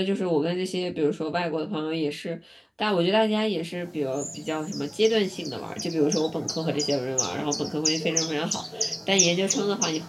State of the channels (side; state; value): both; identical; correlation 1.00